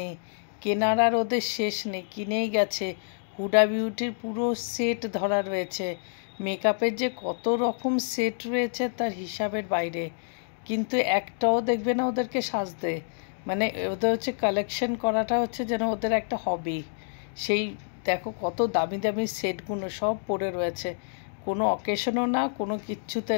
কেনার আর ওদের শেষ নেই, কিনেই গেছে। হুডা বিউটির পুরো সেট ধরা রয়েছে। মেকআপের যে কত রকম সেট রয়েছে তার হিসাবের বাইরে। কিন্তু একটাও দেখবে না ওদেরকে সাজতে। মানে ওদের হচ্ছে কালেকশন করাটা হচ্ছে যেন ওদের একটা হবি। সেই দেখো কত দামি দামি সেটগুলো সব পড়ে রয়েছে। কোনো অকেশনও না, কোনো কিচ্ছুতে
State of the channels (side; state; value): right; silent; digital silence